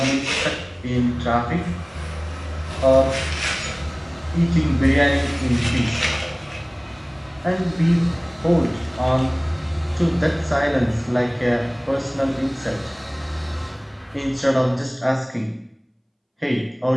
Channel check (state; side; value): identical; both; correlation 1.00